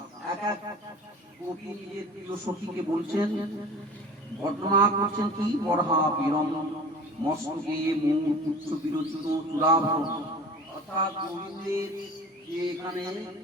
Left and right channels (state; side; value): normal; both; correlation 0.40